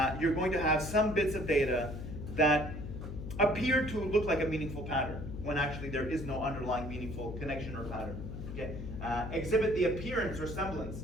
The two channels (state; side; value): noise; left; hum, 8 dB below the sound